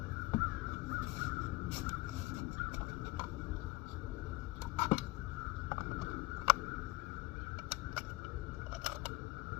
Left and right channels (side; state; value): right; quieter; 21.7 dB